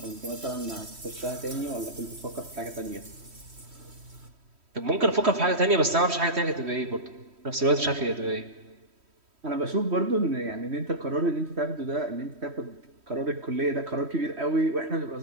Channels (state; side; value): late; left; 3.1 ms